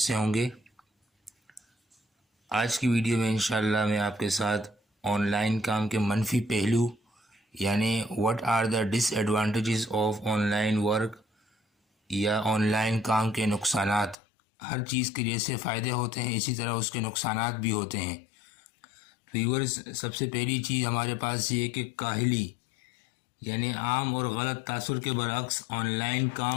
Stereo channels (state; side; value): drops out; right; at 14.2 s